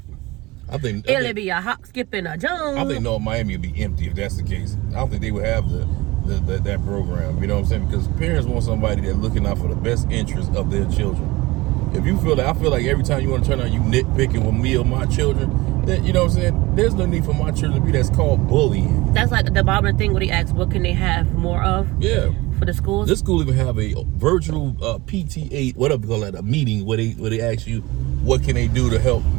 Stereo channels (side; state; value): left; quieter; 21.2 dB